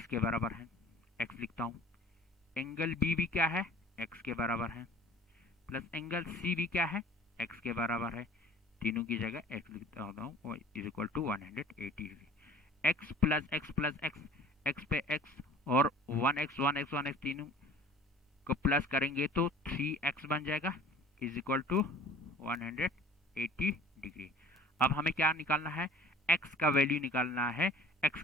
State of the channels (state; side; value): normal; both; correlation 0.47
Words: के बराबर है, एक्स लिखता हूं। एंगल बी भी क्या है? एक्स के बराबर है, प्लस एंगल सी भी क्या है? एक्स के बराबर है। तीनों की जगह एक्स लिखता हूँ, is equal to 180 degree. X plus X plus X, X पे एक्स और 1x 1x 1x तीनों को प्लस करेंगे तो 3x बन जाएगा, इज इक्वल टू 180 डिग्री। अब हमें क्या निकालना है? x का वैल्यू निकालना है। x